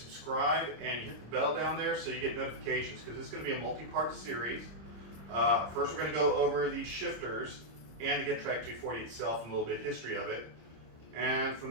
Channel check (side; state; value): left; late; 26 ms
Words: and you hit the bell down there so you get notifications, because it's going to be a multi-part series. First we're going to go over the shifters and the Getrag 240 itself and a little bit of history of it. And